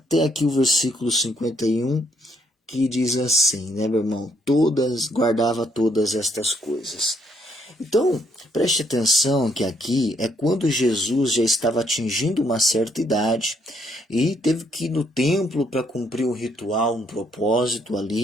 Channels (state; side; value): normal; both; correlation 0.70